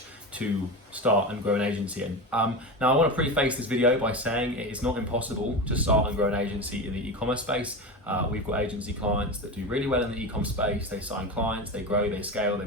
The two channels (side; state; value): both; normal; correlation 0.23